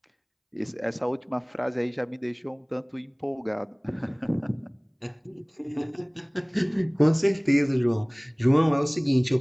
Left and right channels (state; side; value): identical; both; correlation 1.00